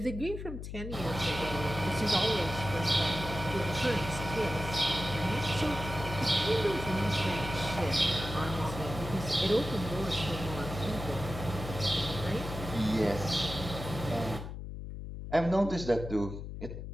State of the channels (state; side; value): noise; left; hum, 8 dB below the sound